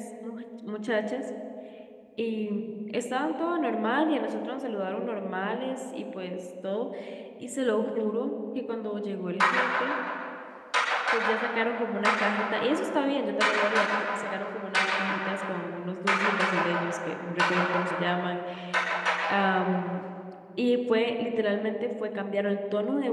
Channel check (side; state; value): both; identical; correlation 1.00